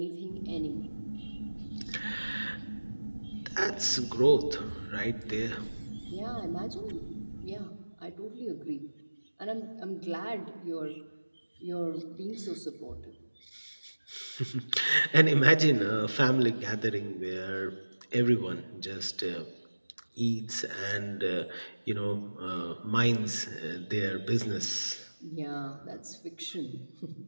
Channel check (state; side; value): inverted; both; correlation -1.00